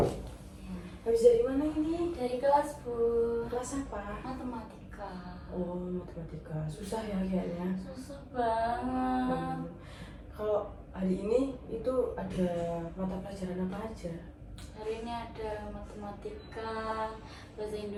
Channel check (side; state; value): both; identical; correlation 1.00